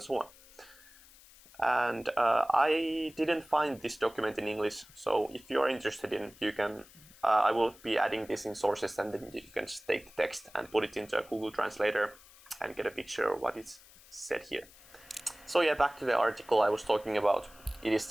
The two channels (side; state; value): left; noise; hiss, 23 dB below the sound